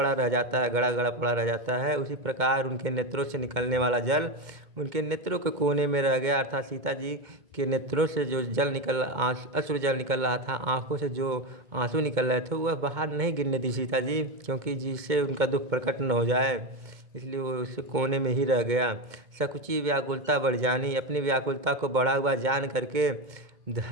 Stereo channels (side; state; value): left; late; 2.2 ms